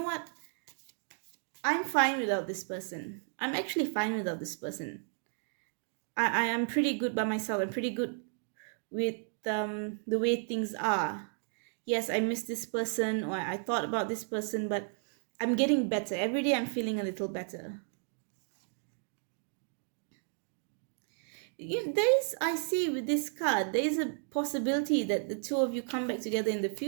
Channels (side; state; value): left; silent; 56 dB below the other